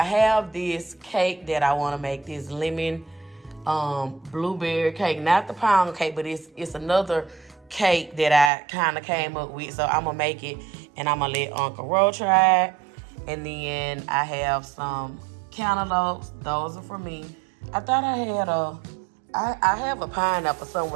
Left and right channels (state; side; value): drops out; left; at 8.5 s